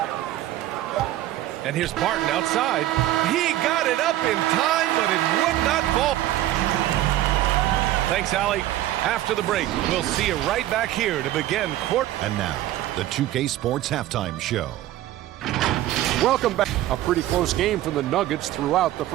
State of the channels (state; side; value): quieter; left; 14.2 dB